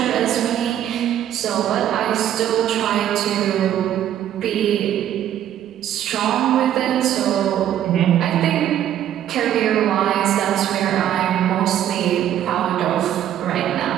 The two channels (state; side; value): quieter; left; 11.1 dB